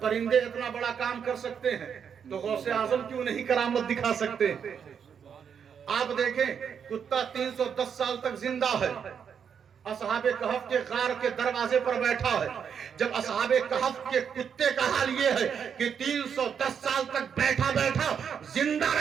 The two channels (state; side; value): quieter; left; 7.4 dB